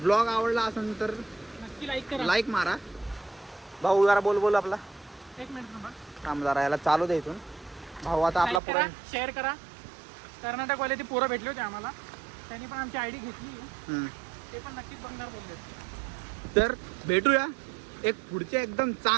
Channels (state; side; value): drops out; left; at 8.6 s